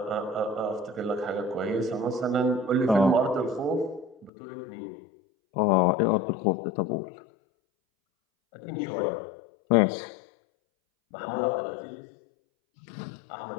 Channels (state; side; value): drops out; right; at 4.3 s